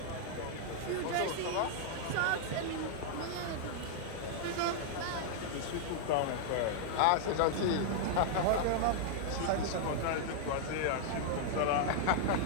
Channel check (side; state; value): both; different; correlation -0.01